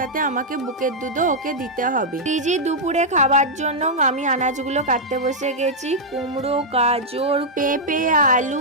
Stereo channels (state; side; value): normal; both; correlation -0.05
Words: আমাকে বুকের দুধও ওকে দিতে হবে। শ্রীজি দুপুরে খাবার জন্য আমি আনাজগুলো কাটতে বসে গেছি। কুমড়ো, গাজর, পেঁপে, আলু